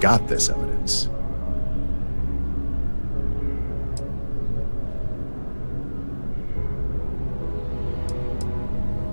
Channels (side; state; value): both; inverted; correlation -1.00